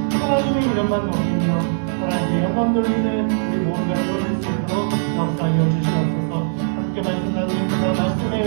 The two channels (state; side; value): silent; left; digital silence